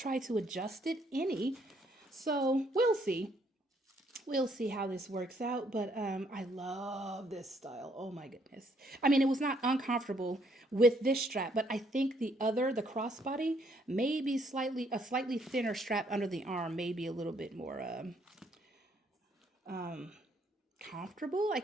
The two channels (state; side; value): normal; both; correlation 0.69